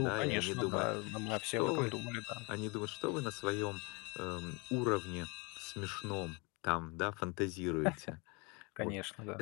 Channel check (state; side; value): quieter; right; 29.1 dB